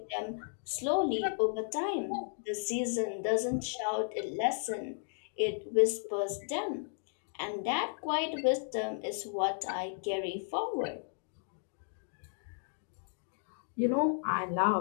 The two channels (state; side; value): silent; right; digital silence